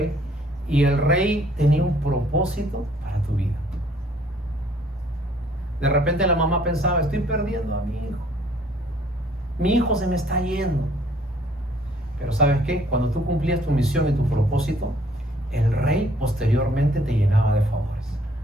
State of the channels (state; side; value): normal; both; correlation 0.61